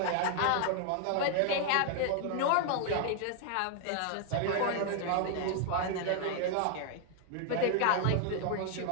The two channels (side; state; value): both; different; correlation 0.00